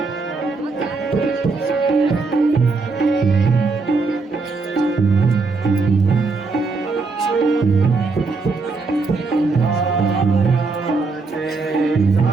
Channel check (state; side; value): quieter; left; 4.1 dB